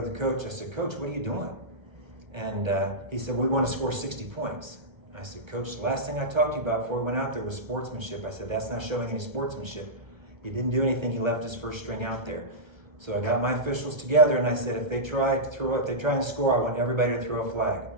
the coach, I said, Coach, what are you doing? And he said, we want to score 60 points. I said, Coach, the last thing I talked to you about before we went out there was sportsmanship. I said, that's not showing any sportsmanship. He didn't do anything, he left his first string out there. So I got my officials together and I said, if they try and score, I want everybody to throw a flag.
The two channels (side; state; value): left; late; 1.5 ms